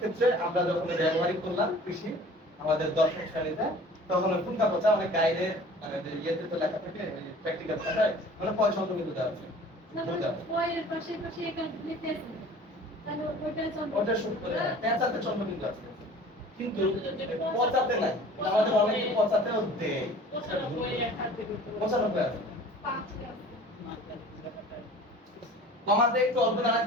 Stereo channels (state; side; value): normal; both; correlation 0.46